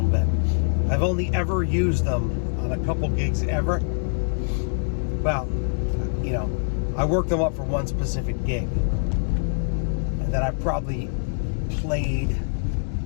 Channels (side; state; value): right; silent; digital silence